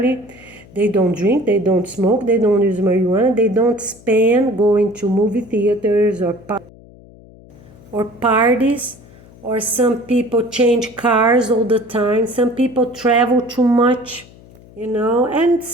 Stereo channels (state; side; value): noise; left; hum, 23 dB below the sound